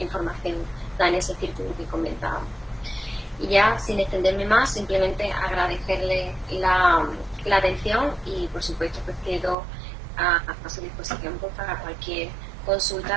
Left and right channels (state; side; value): drops out; left; at 9.6 s